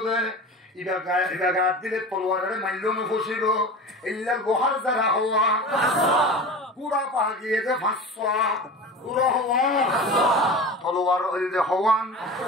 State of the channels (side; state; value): both; normal; correlation 0.33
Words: দে ইবা দিলে তলোয়ারের মাইল ফসিব এলে লোহার জেরা হওয়া গুড়া পা গিয়ে যে 500 গুড়ো হওয়া তলোয়ার যে হওয়ান